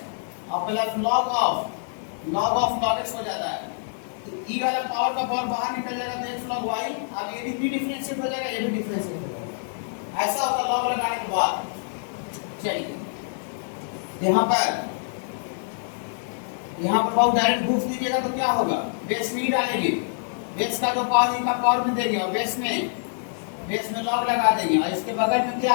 और plus log of log x हो जाता है। तो e वाला पावर का पावर बाहर निकल जाएगा तो x log y, अब ये भी डिफरेंशिएट हो जाएगा, ये भी डिफरेंशिएट हो जाएगा। ऐसा होता log लगाने के बाद। चलिए यहाँ पर बहुत डायरेक्ट घूस दीजिएगा तो क्या होगा, बेस में ही डालेंगे, बेस का जो पावर इनका पावर में देंगे और बेस में लॉग लगा देंगे, और इसके बगल में क्या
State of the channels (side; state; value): right; silent; digital silence